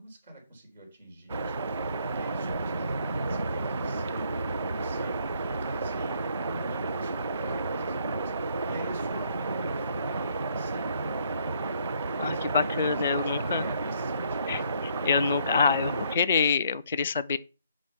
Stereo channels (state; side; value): inverted; both; correlation -0.67